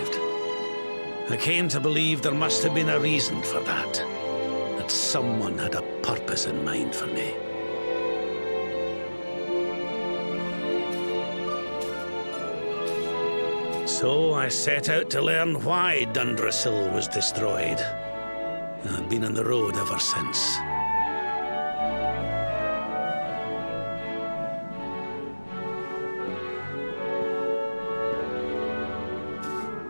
I came to believe there must have been a reason for that. That someone had a purpose in mind for me. So I set out to learn why Dundrasil was destroyed. I've been on the road ever since.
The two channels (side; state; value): both; inverted; correlation -1.00